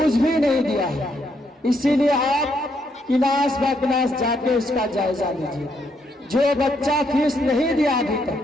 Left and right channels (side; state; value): both; normal; correlation 0.75